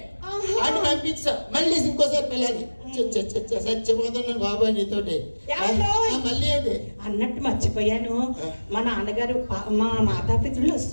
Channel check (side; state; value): both; inverted; correlation -1.00